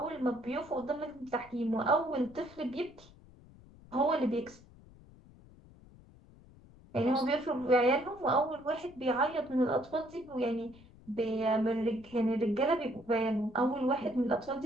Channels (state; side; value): noise; left; rumble, 23 dB below the sound